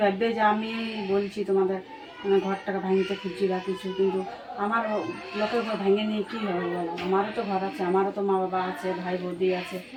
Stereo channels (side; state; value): both; identical; correlation 1.00